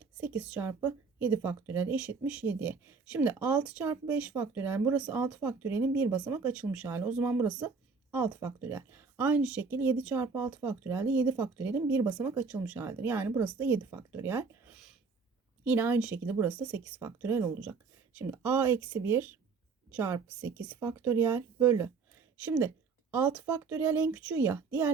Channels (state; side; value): quieter; left; 4.9 dB